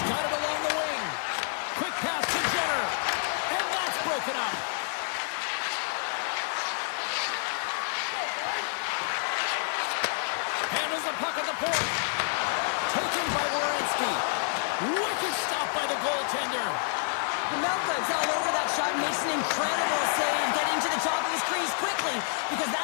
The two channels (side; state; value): right; silent; digital silence